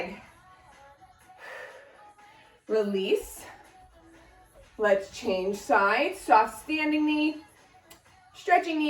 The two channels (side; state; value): both; identical; correlation 1.00